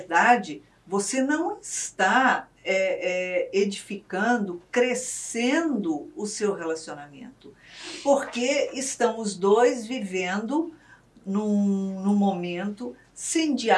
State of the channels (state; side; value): identical; both; correlation 1.00